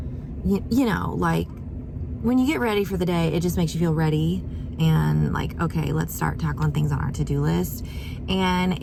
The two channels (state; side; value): identical; both; correlation 1.00